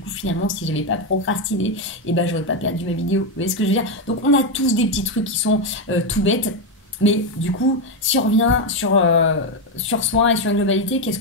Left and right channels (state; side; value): normal; both; correlation 0.06